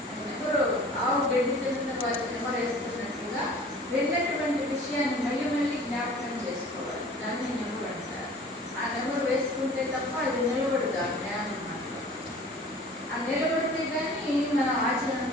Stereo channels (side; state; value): both; normal; correlation 0.46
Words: నెమరు ఆవు గడ్డి తిన్న వారి నెమరు వేసుకున్నట్టుగా విన్నటువంటి విషయాన్ని మళ్ళీ మళ్ళీ జ్ఞాపకం చేసుకోవాలి. దాన్ని నెమరు అంటారు. ఆ నెమరు వేసుకుంటే తప్ప అది నిలబడదు ఆ జ్ఞానం మాత్రం. ఆ నిలబడితే కానీ మన